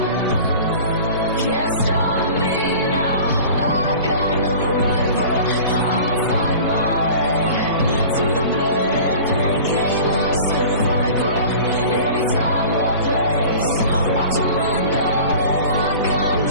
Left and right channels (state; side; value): inverted; both; correlation -0.40